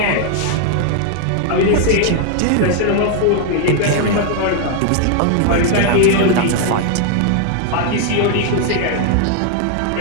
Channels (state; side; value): different; both; correlation 0.00